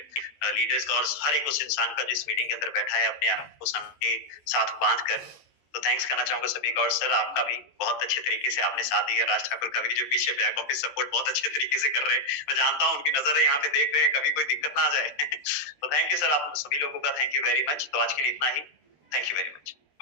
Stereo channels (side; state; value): right; late; 14 ms